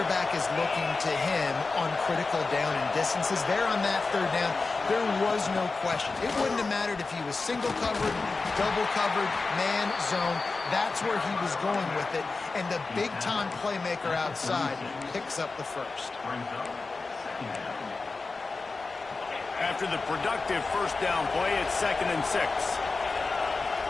is looking to him on critical down and distances. There on that 3rd down, there was no question. It wouldn't have mattered if he was single covered, double covered, man, zone. That's where he was going with it, and the big-time playmaker outside picks up the 1st. After the productive 1st down play, it's 2nd and 6.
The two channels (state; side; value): quieter; right; 3.9 dB